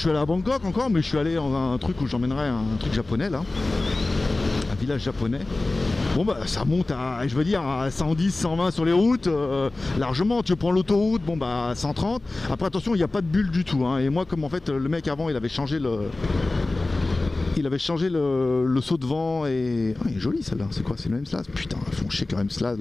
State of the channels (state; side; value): quieter; right; 3.0 dB